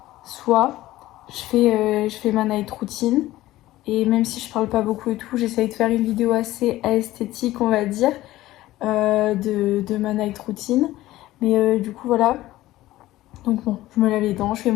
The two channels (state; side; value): quieter; right; 16.1 dB